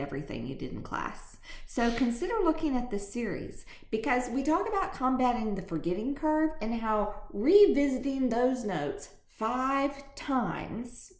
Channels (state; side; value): identical; both; correlation 1.00